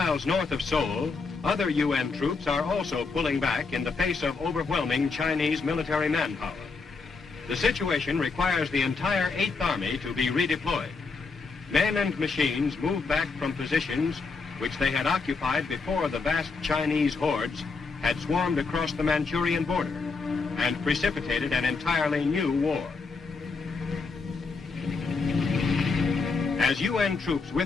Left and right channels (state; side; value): quieter; right; 4.4 dB